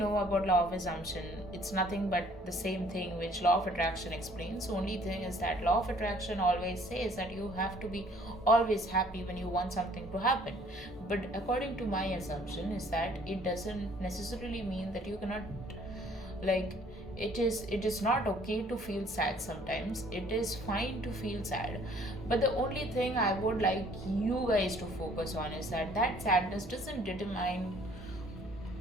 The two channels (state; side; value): normal; both; correlation 0.58